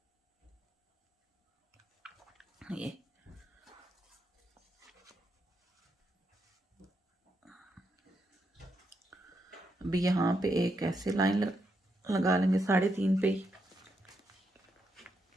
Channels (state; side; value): normal; both; correlation 0.81